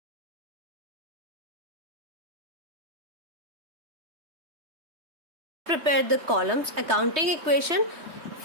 prepare the columns. Accounting equation,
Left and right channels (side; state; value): left; late; 3.1 ms